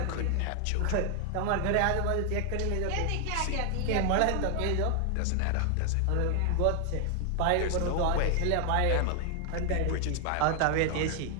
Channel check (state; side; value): different; both; correlation 0.00